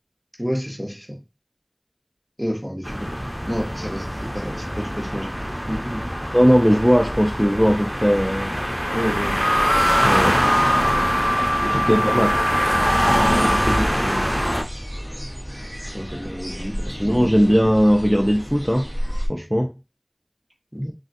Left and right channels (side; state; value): both; identical; correlation 1.00